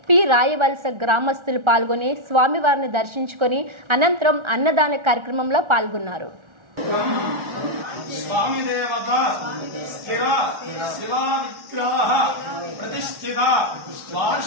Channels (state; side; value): late; left; 1.4 ms